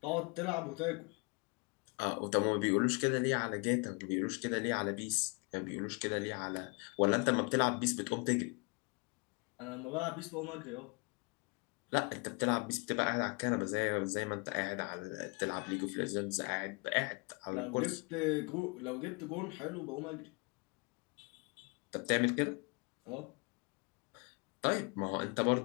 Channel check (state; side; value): quieter; right; 31.7 dB